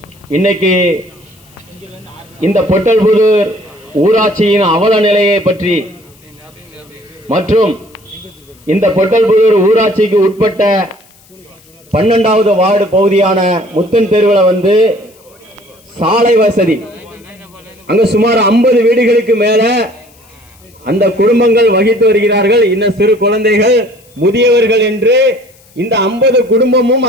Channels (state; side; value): noise; left; hiss, 29 dB below the sound